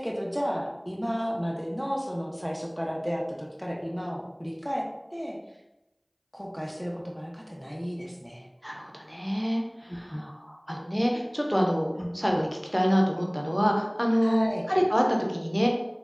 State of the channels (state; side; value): identical; both; correlation 1.00